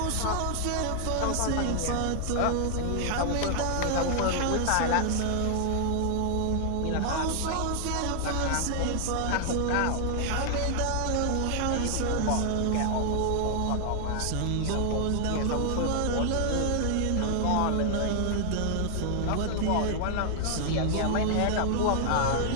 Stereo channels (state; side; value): different; both; correlation 0.00